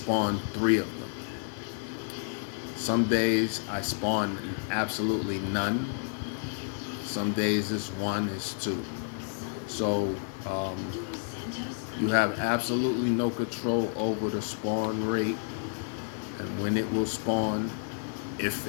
3 of them. Some days I spawned absolutely none. Some days it's 1, it's 2. So you have absolutely no control over the spawn rate and when it will spawn, if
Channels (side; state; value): right; silent; digital silence